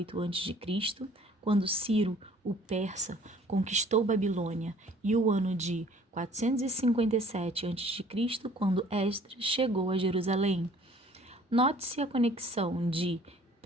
a.C., quando Ciro, o persa, conquistou Babilônia, e o ano de 457 a.C., quando Esdras chegou a Jerusalém. Note-se a conexão de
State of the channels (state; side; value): normal; both; correlation 0.54